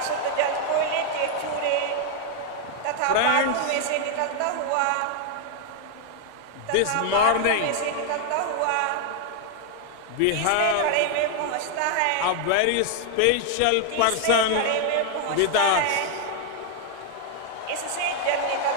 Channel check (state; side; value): different; both; correlation 0.00